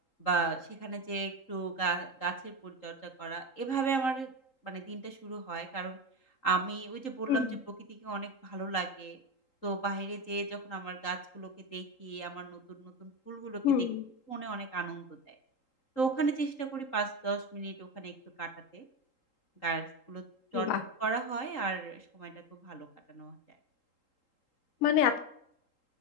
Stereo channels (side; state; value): right; late; 3.8 ms